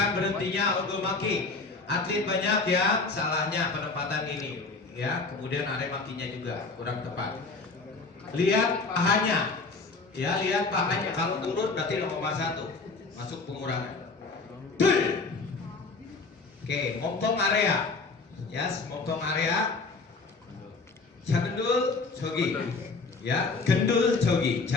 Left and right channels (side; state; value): right; quieter; 3.9 dB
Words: berhentinya untuk maki. Atlet banyak ya salahnya penempatan ini ya. Kemudian area makinya juga kurang tepat. Lihat pahanya, ya lihat pahanya. Kalau turun berarti 0,1 masuk pengurangan. Dul. Oke, montong area, ya, montong area. Jagendul jogi, ya, gendul jogi,